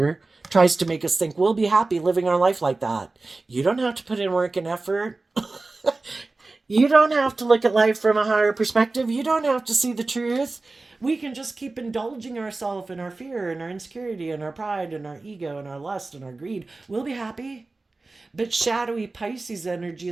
tries to make us think we'll be happy living our life like that. You don't have to put in work and effort. You don't have to look at life from a higher perspective. You don't have to see the truth. We can just keep indulging ourselves in our fear and our insecurity and our pride and our ego and our lust and our greed. We'll be happy. But shadowy Pisces energy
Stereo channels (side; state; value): left; quieter; 3.4 dB